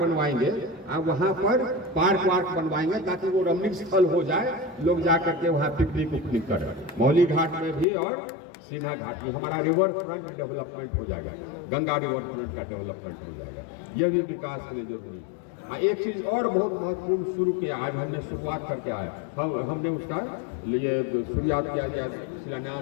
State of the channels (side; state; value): right; drops out; at 7.9 s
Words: वहाँ पर पार्क वार्क बनवाएंगे ताकि वो रमणीय स्थल हो जाए, लोग जा करके वहाँ पिकनिक उकनिक करें। मौली घाट में भी और सिन्हा घाट में हमारा रिवर फ्रंट डेवलपमेंट हो जाएगा, गंगा रिवर फ्रंट का डेवलपमेंट हो जाएगा। ये भी विकास के लिए जरूरी है। एक चीज और बहुत महत्वपूर्ण शुरू किया, आज हमने शुरुआत करके आया, हमने उसका लिए शुरुआत किया,